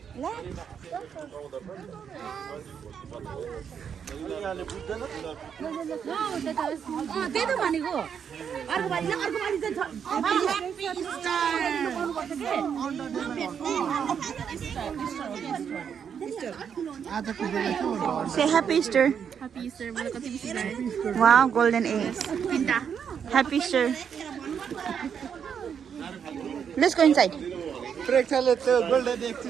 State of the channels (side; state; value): left; quieter; 7.5 dB